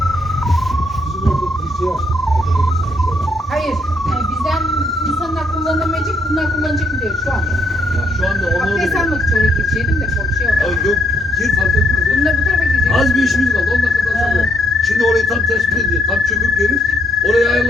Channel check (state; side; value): normal; both; correlation 0.73